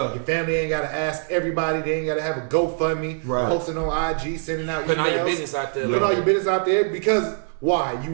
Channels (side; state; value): left; silent; 63 dB below the other